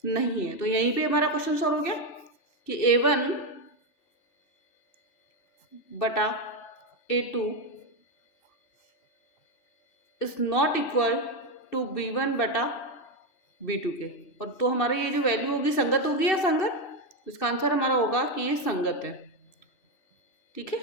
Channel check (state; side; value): late; right; 2.6 ms